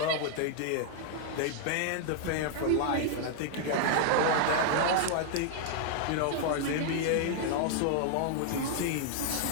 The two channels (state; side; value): different; both; correlation 0.00